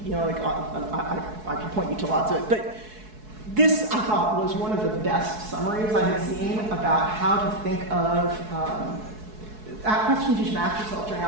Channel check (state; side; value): late; left; 4.7 ms